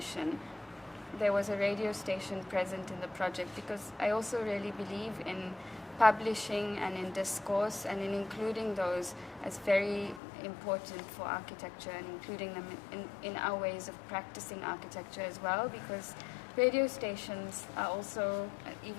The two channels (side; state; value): right; drops out; at 10.2 s